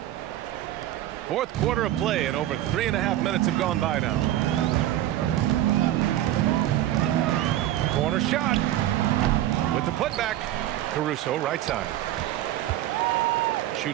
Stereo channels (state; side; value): quieter; left; 13.5 dB